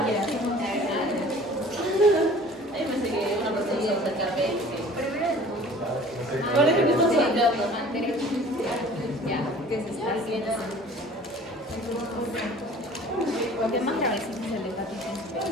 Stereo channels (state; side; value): normal; both; correlation 0.47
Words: Ahí me que una procedida acercarme. Ahora que me estás hablando. Ya, que se está haciendo.